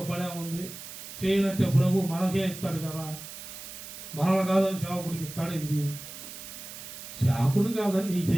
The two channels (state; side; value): noise; right; hiss, 12 dB below the sound